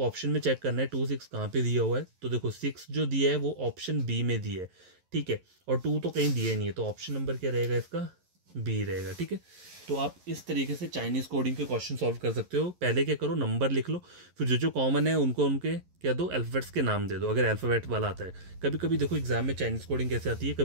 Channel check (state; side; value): late; left; 11 ms